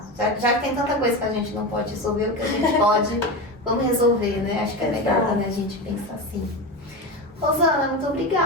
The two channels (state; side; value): normal; both; correlation 0.20